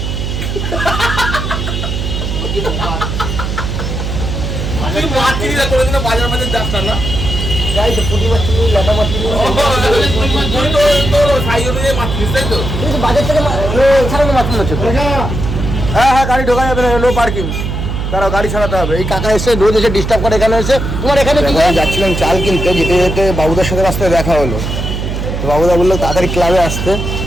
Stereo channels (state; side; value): noise; right; hum, 3 dB below the sound